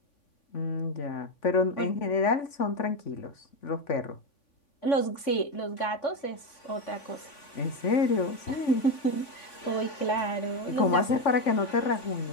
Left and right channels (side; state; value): right; late; 3.5 ms